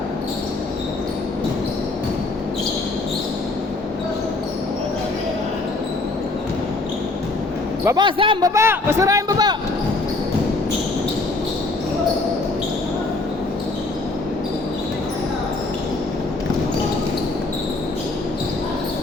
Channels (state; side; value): quieter; right; 3.2 dB